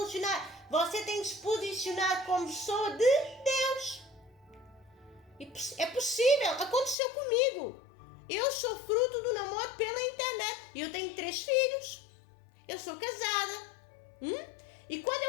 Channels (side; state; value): right; drops out; at 7.0 s